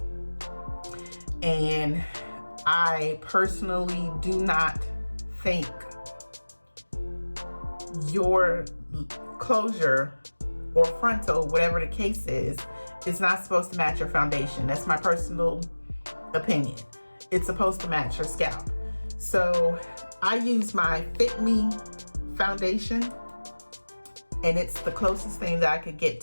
and I personally do not think your closure or frontal, whatever the case is not supposed to match your foundation. That's my personal opinion. It's supposed to match your scalp. So I use my Fit Me foundation, and it's the closest thing that I could get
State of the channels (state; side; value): inverted; both; correlation -1.00